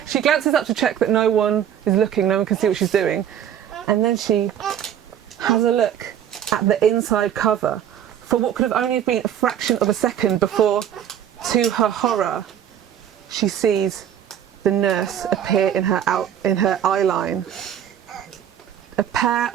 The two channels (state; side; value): quieter; left; 9.8 dB